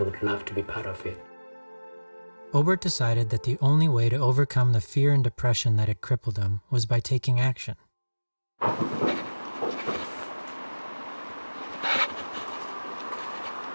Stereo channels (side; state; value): both; inverted; correlation -1.00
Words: love to be part of it. Obert decided that the only way to overcome the fear and depression that had crippled him was by taking action.